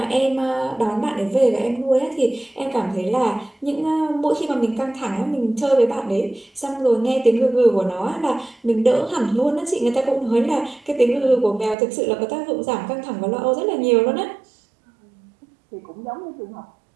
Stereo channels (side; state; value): left; drops out; at 11.8 s